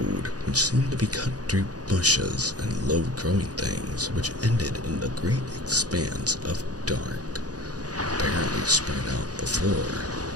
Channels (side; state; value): left; late; 0.68 ms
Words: which seemed to be cut through bushes and low-growing things which ended in the great expanse of dark, apparently spread out before